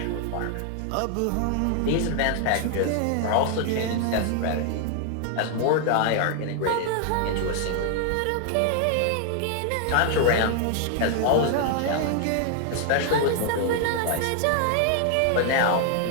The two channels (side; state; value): both; different; correlation 0.00